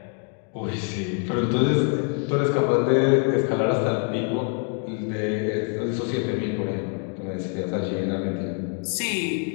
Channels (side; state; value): right; quieter; 39.0 dB